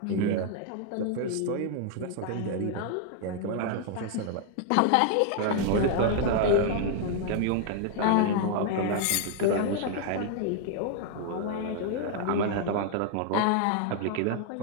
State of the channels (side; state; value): both; different; correlation 0.00